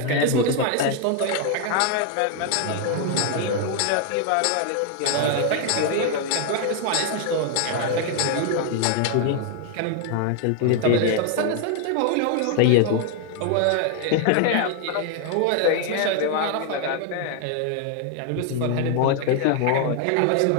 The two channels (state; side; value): different; both; correlation 0.00